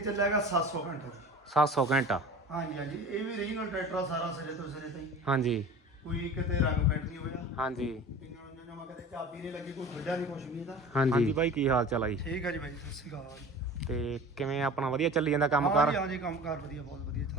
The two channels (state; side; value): normal; both; correlation 0.38